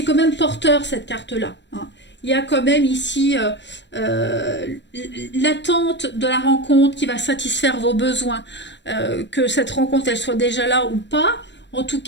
quand même porteur cette carte-là. Hein. Il y a quand même ici euh, l'attente de la rencontre qui va satisfaire vos besoins. Que cette rencontre elle soit déjà là ou pas. En tout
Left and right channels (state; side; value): late; right; 0.52 ms